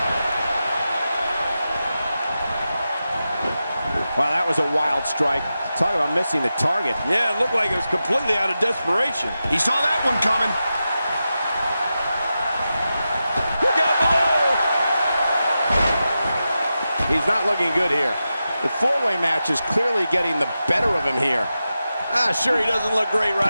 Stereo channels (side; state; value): both; inverted; correlation -0.91